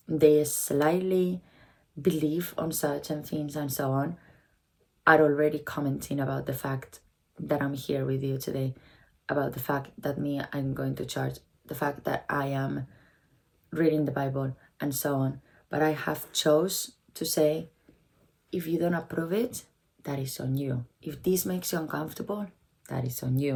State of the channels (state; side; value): identical; both; correlation 1.00